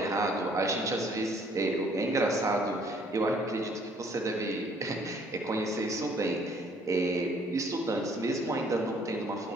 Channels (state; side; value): normal; both; correlation 0.61